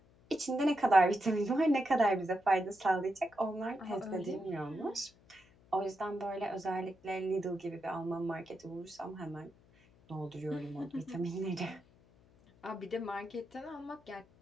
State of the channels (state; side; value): noise; left; hum, 28 dB below the sound